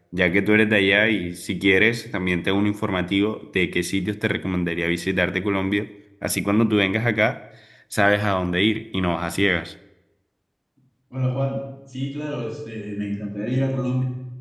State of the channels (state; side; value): identical; both; correlation 1.00